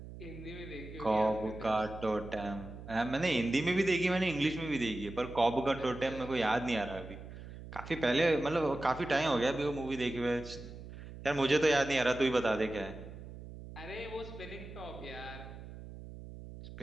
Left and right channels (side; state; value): right; noise; hum, 13 dB below the sound